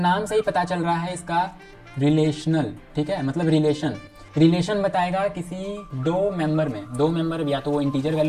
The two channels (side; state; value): both; identical; correlation 1.00